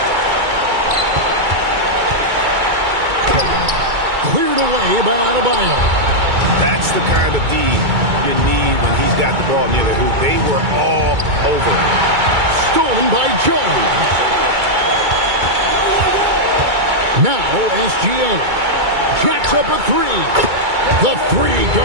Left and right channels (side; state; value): left; late; 2.3 ms